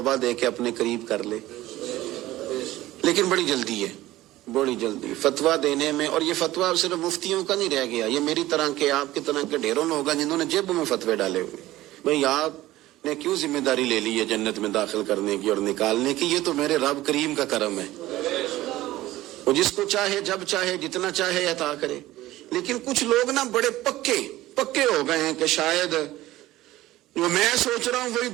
دے کے اپنے قریب کر لے، لیکن بڑی جلدی ہے، بڑی جلدی فتویٰ دینے میں. اور یہ فتویٰ صرف مفتیوں کا نہیں رہ گیا، یہ میری طرح کے، آپ کی طرح کے ڈھیروں لوگ ہیں جنہوں نے جیبوں میں فتوے ڈالے ہوئے. بھئی آپ نے کیوں ذمہ داری لے لی ہے جنت میں داخل کرنے کی اور نکالنے کی؟ یہ تو میرے رب کریم کا کرم ہے، وہ جس کو چاہے جب چاہے جتنا چاہے عطا کرے. لیکن کچھ لوگ نا بڑے پکے ہو گئے ہیں کہ شاید جو میں سوچ رہا ہوں وہی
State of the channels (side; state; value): left; quieter; 16.3 dB